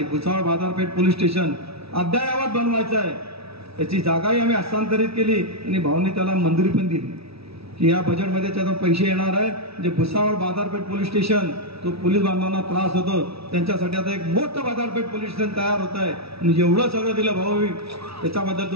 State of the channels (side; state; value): left; late; 0.77 ms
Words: भुसावळ बाजारपेठ पोलीस स्टेशन अद्ययावत बनवायचं आहे. त्याची जागाही आम्ही हस्तांतरित केली आणि भाऊंनी त्याला मंजुरी पण दिली की या बजेटमध्ये त्याचा पैसे येणार आहे. म्हणजे भुसावळ बाजारपेठ पोलीस स्टेशन, तो पोलीस बांधवांना त्रास होतो त्यांच्यासाठी आता एक मोठं बाजारपेठ पोलीस स्टेशन तयार होत आहे. आणि एवढं सगळं दिलं भाऊ, त्याच्याबद्दल